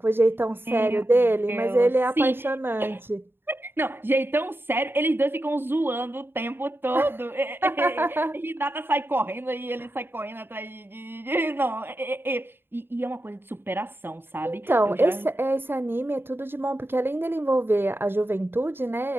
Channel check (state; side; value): late; left; 0.10 ms